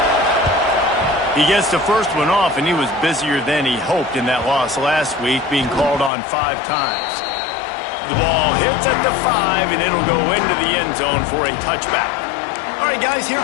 He gets the first one off, and he was busier than he hoped in that loss last week, being called on 5 times. The ball hits at the 5, and it'll go into the end zone for a touchback. All right, guys, here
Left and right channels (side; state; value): right; drops out; at 6.1 s